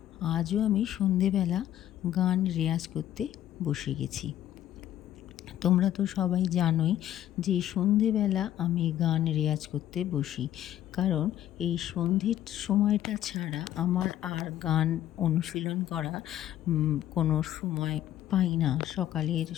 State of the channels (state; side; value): quieter; right; 12.2 dB